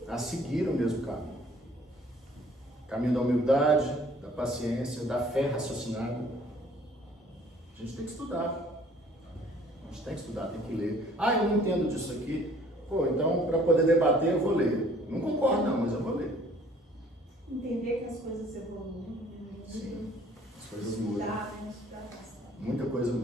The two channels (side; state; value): both; normal; correlation 0.56